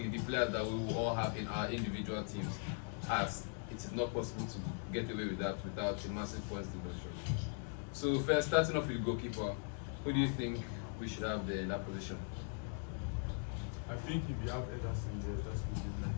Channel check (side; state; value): right; silent; 51 dB below the other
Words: the players that we will all have in our individual teams, as it is not possible to get away with that without a massive points deduction. So first, starting off with goalkeeper, who do you think we should have there in that position? I think if you have Ederson there, that's good.